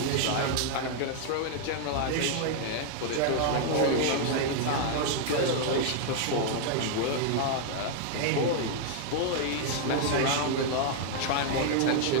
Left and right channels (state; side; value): different; both; correlation 0.00